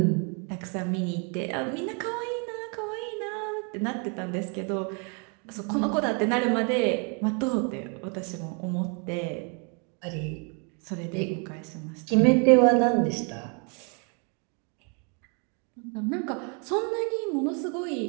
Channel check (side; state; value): left; quieter; 36.8 dB